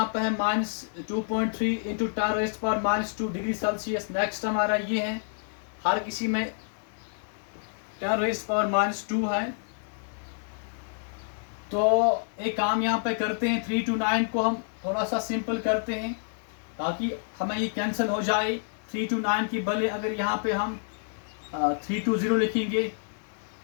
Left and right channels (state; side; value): silent; right; digital silence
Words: पे है -2.3 इंटू 10⁻² डिग्री सेल्सियस। नेक्स्ट हमारा ये है, हर किसी में 10⁻² है। तो एक काम यहाँ पे करते हैं, 329 को हम थोड़ा सा सिंपल करते हैं ताकि हमें ये कैंसिल हो जाए। 329 की बदले अगर यहाँ पे हम 320 लिखेंगे